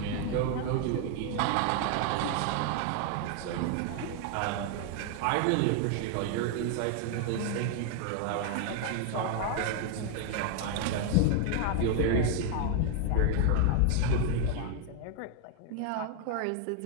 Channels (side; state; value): both; different; correlation 0.00